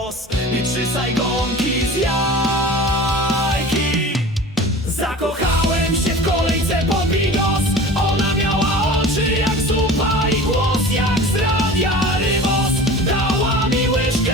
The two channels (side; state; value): both; normal; correlation 0.38